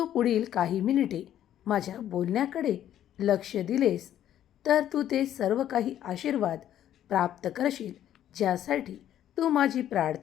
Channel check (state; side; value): quieter; right; 11.3 dB